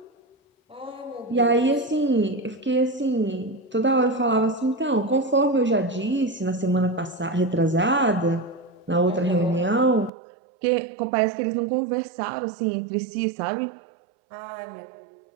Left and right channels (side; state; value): left; drops out; at 10.1 s